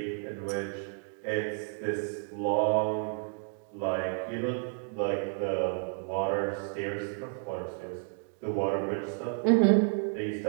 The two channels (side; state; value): left; silent; 56 dB below the other